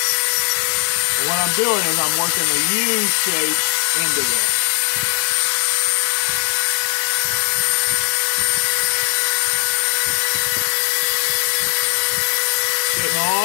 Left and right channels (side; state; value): right; silent; 67 dB below the other